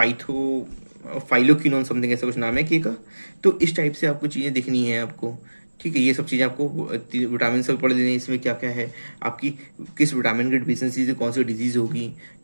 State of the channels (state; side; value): inverted; both; correlation -1.00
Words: फाइलोक्विनोन, समथिंग ऐसा कुछ नाम है के का। तो इस टाइप से आपको चीज़ें दिखनी है आपको, ठीक है। ये सब चीज़ें आपको विटामिन से पढ़ लेनी है। इसमें क्या क्या है आपकी, किस विटामिन की डिफिशियंसी से कौन सी डिजीज़ होगी,